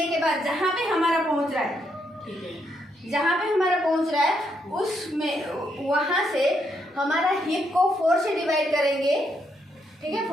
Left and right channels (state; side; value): normal; both; correlation 0.77